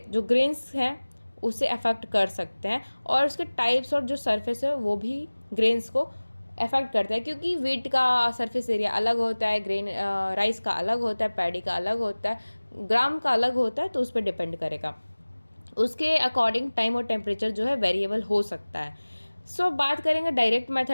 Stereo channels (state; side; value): inverted; both; correlation -1.00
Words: जो ग्रेन्स हैं उसे अफेक्ट कर सकते हैं, और उसके टाइप्स और जो सरफेस है वो भी ग्रेन्स को अफेक्ट करता है, क्योंकि वीट का सरफेस एरिया अलग होता है, ग्रेन राइस का अलग होता है, पैडी का अलग होता है, ग्राम का अलग होता है. तो उस पर डिपेंड करेगा, उसके अकॉर्डिंग टाइम और टेम्परेचर जो है वेरिएबल हो सकता है. सो बात करेंगे डायरेक्ट